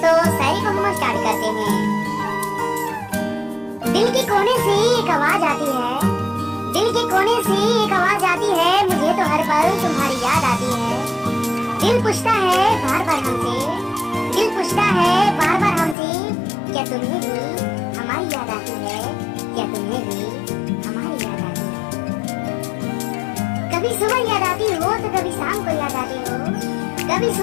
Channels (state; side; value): drops out; right; at 16.0 s